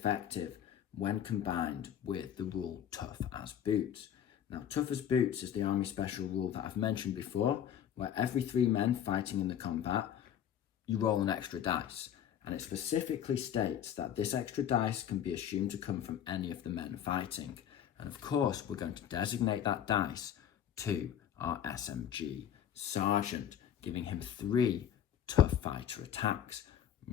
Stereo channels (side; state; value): right; quieter; 9.7 dB